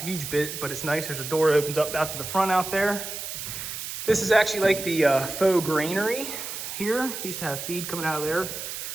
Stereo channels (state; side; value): noise; right; hiss, 7 dB below the sound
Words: bit, but it's nice. There's a door that opens up out to the front out there. This is actually like the faux granary here. Used to have feed coming out of there.